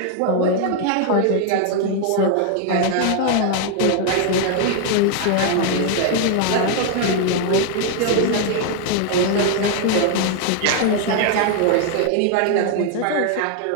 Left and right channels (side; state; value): both; different; correlation 0.00